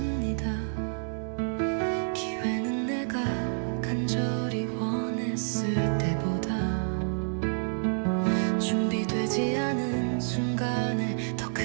기회는 내가 간절히 원했을 때보다 준비되지 않은 순간에 더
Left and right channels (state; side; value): silent; left; digital silence